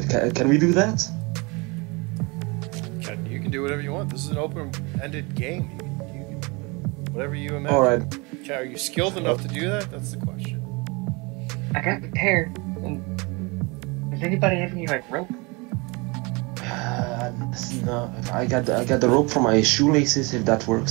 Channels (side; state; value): left; quieter; 27.7 dB